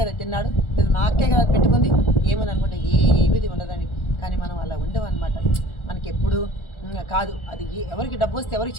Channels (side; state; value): right; late; 1.4 ms